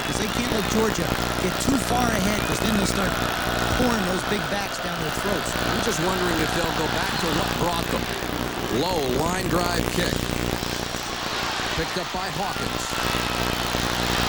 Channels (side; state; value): both; identical; correlation 1.00